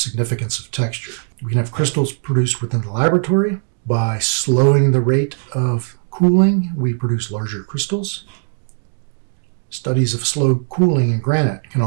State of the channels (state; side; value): silent; left; 62 dB below the other